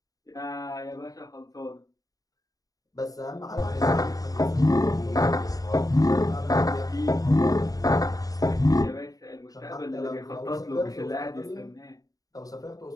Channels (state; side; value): late; right; 0.18 ms